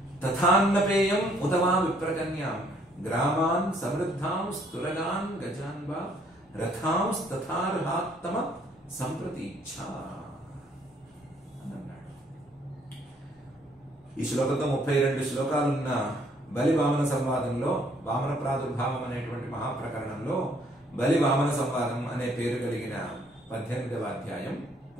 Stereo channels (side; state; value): both; normal; correlation 0.64